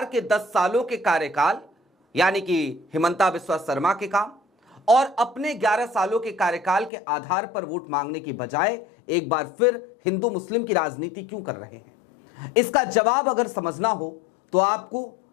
के 10 सालों के कार्यकाल, यानी कि हिमंता बिस्वा शर्मा के काम और अपने 11 सालों के कार्यकाल के आधार पर वोट मांगने की बजाय एक बार फिर हिंदू मुस्लिम की राजनीति क्यों कर रहे हैं? इसका जवाब अगर समझना हो तो आपको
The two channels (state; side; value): drops out; right; at 6.9 s